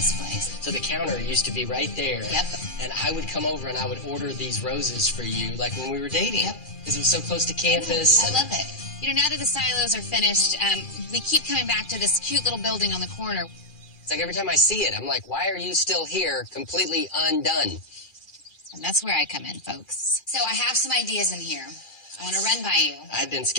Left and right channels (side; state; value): right; late; 2.4 ms